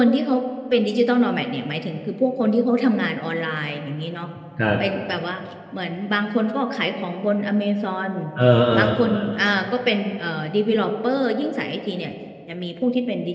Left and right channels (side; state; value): both; identical; correlation 1.00